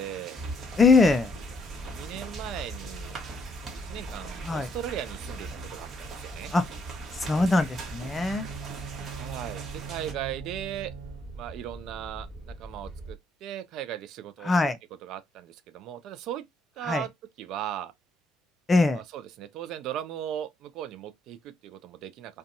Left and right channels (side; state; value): both; normal; correlation 0.71